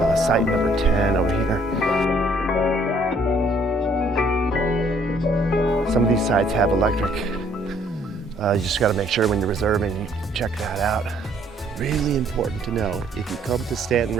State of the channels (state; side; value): normal; both; correlation 0.63